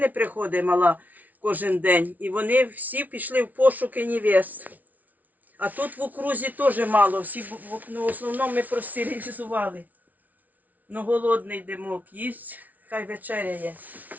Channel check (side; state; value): left; late; 0.076 ms